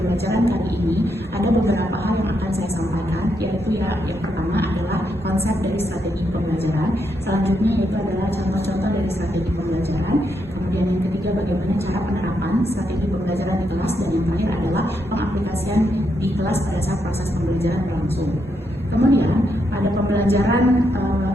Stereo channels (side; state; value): both; normal; correlation 0.80